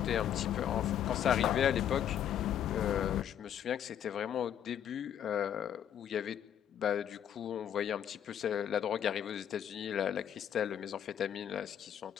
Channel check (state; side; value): quieter; right; 9.7 dB